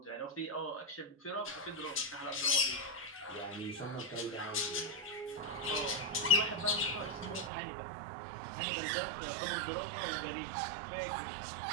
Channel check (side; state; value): left; drops out; at 7.5 s